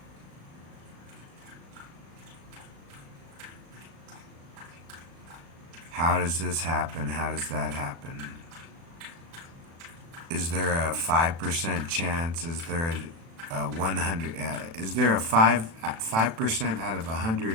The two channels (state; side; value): late; left; 36 ms